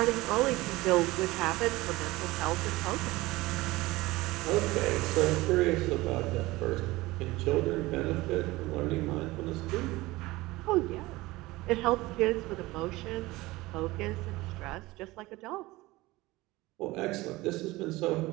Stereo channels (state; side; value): quieter; left; 19.9 dB